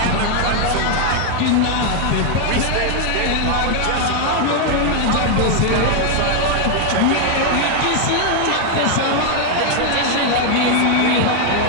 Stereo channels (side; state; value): both; different; correlation 0.00